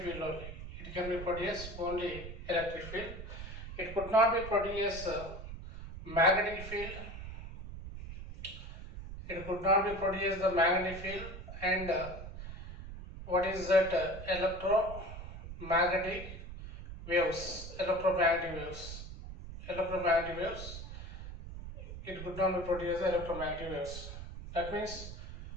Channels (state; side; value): noise; right; rumble, 10 dB below the sound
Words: field only. It can be produced only electric field. It could not be produced magnetic field. It could not be produced the magnetic field. And what is that? Electromagnetic waves. Electromagnetic waves. Electromagnetic waves. It could not be produced electromagnetic waves. That means